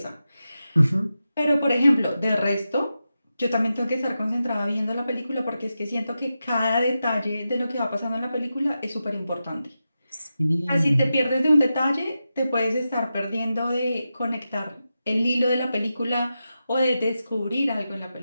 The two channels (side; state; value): both; inverted; correlation -0.90